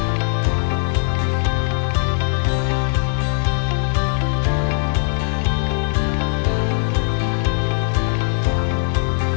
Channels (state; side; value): silent; right; 66 dB below the other